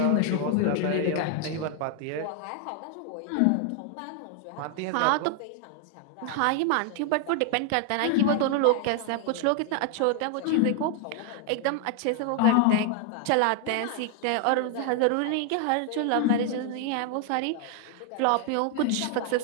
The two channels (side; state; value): both; different; correlation 0.00